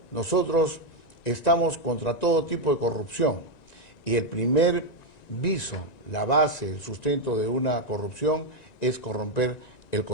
Nosotros estamos contra todo tipo de corrupción y el primer viso, la base, el sustento de una corrupción es corromper el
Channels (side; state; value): right; late; 1.9 ms